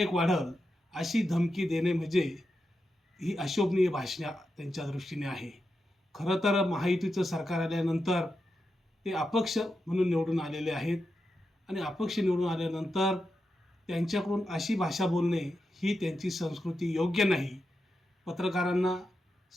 वाढल अशी धमकी देणे म्हणजे ही अशोभनीय भाषा त्यांच्या दृष्टीने आहे. खरं तर महायुतीचं सरकार आल्यानंतर ते अपक्ष म्हणून निवडून आलेले आहेत आणि अपक्ष निवडून आल्यानंतर त्यांच्याकडून अशी भाषा बोलणे ही त्यांची संस्कृती योग्य नाही. पत्रकारांना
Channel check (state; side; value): normal; both; correlation 0.88